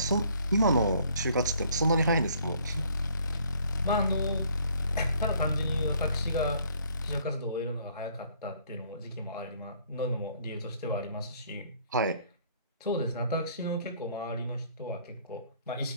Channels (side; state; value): both; inverted; correlation -0.61